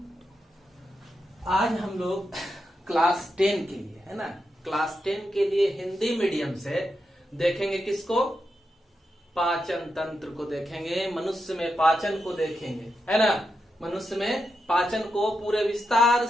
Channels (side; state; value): both; normal; correlation 0.86